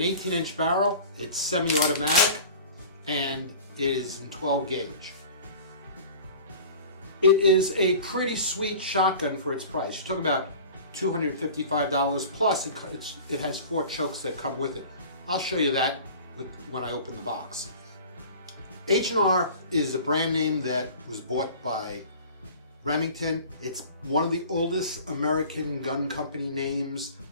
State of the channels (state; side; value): inverted; both; correlation -0.41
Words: barrel, it's semi-automatic, and is in 12 gauge. It is a pretty sweet shotgun for its price. You're talking about $255 plus it has 4 chokes that come with it. I'll show you that when I open the box. H&R is a brand name that was bought by Remington. It's one of the oldest American gun company names